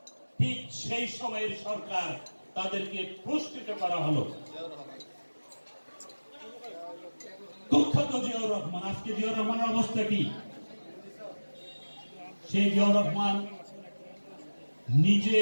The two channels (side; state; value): both; inverted; correlation -1.00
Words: ঠিক সেই সময়ের সরকার তাদেরকে পুরস্কৃত করা হলো। কুখ্যাত জিয়াউর রহমান, আজকে জিয়াউর রহমানের অবস্থা কি? সেই জিয়াউর রহমান নিজে